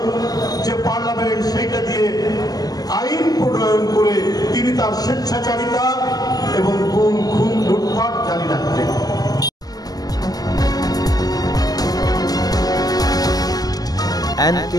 যে পার্লামেন্ট সেইটা দিয়ে আইন প্রণয়ন করে তিনি তার স্বেচ্ছাচারিতা এবং গুম, খুন, লুটপাট জারি রাখতেন।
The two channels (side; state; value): right; late; 0.19 ms